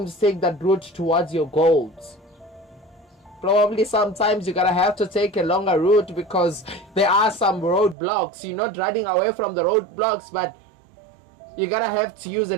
Take that route towards your goals. Probably sometimes you're gonna have to take a longer route because there are some roadblocks. You're not running away from the roadblocks, but you're gonna have to use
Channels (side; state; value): left; drops out; at 8.0 s